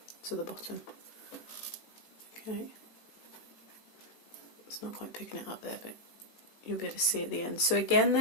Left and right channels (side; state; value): right; late; 18 ms